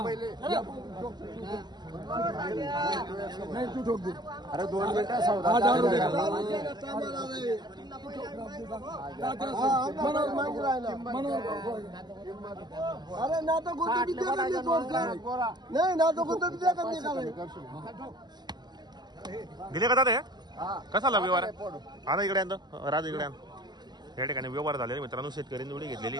अरे 2 मिनिटं दिले का दादा कसा व्यवहार आता इकडे राज इकडे या ठिकाणी व्यवहार झालेले मित्रांनो शेतकऱ्यांनी जोडी घेतलेली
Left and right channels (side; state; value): left; late; 0.21 ms